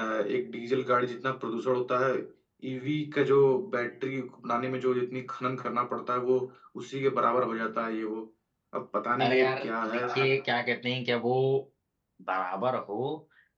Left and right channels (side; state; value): both; identical; correlation 1.00